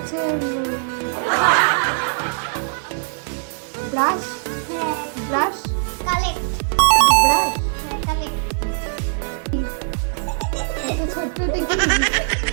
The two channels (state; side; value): silent; left; digital silence